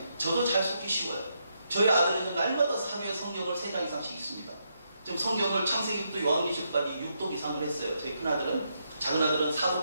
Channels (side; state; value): both; inverted; correlation -0.80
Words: 저도 잘 속기 쉬워요. 저희 아들은 날마다 하루에 성경을 3장 이상씩 읽습니다. 지금 성경을 창세기부터 요한계시록까지 6독 이상을 했어요. 저희 큰아들은, 작은아들은